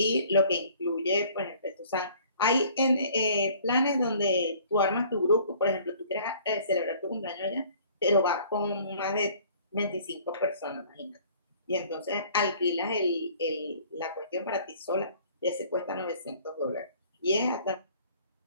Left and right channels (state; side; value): inverted; both; correlation -0.54